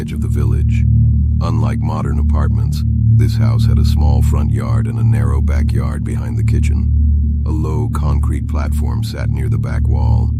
of the village. Unlike modern apartments, this house had a small front yard and a narrow backyard behind the kitchen. A low concrete platform sat near the back wall.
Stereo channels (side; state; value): both; identical; correlation 1.00